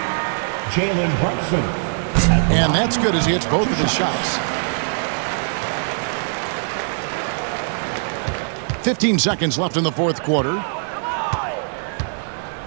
Jalen Brunson. And that's good as he hits both of his shots. 15 seconds left in the fourth quarter.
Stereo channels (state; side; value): silent; left; 65 dB below the other